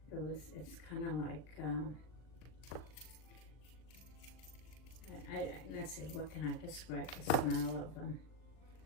It's kind of like, I let's see, what can I describe the smell of them?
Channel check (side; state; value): right; late; 39 ms